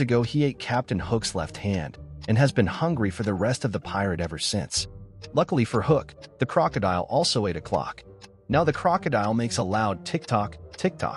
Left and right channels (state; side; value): identical; both; correlation 1.00